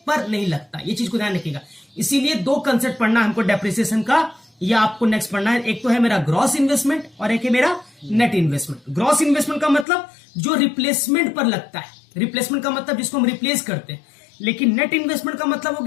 पर नहीं लगता। ये चीज को ध्यान रखिएगा। इसीलिए दो कंसेप्ट पढ़ना हमको डेप्रिसिएशन का, या आपको नेक्स्ट पढ़ना है। एक तो है मेरा ग्रॉस इन्वेस्टमेंट और एक है मेरा नेट इन्वेस्टमेंट। ग्रॉस इन्वेस्टमेंट का मतलब जो रिप्लेसमेंट पर लगता है, रिप्लेसमेंट का मतलब जिसको हम रिप्लेस करते हैं। लेकिन नेट इन्वेस्टमेंट का मतलब हो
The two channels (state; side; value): drops out; right; at 9.9 s